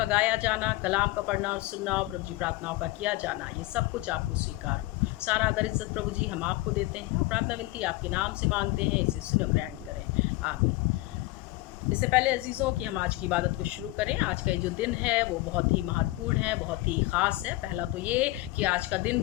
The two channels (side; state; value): right; quieter; 19.7 dB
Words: गाया जाना, कलाम का पढ़ना और सुनना और प्रभु जी प्रार्थनाओं का किया जाना, ये सब कुछ आपको स्वीकार हो। सारा आदर इज्जत प्रभु जी हम आपको देते हैं और प्रार्थना विनती आपके नाम से मांगते हैं, इसे सुनो ग्रहण करें, आमीन। इससे पहले अजीज़ों कि हम आज की इबादत को शुरू करें, आज का ये जो दिन है वो बहुत ही महत्वपूर्ण है, बहुत ही ख़ास है। पहला तो ये कि आज का दिन